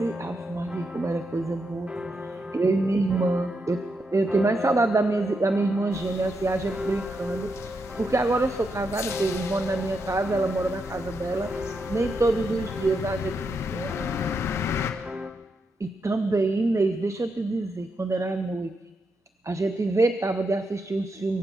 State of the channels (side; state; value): both; normal; correlation 0.83